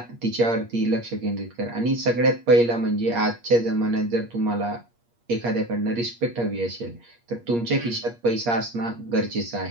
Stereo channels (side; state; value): left; late; 8.5 ms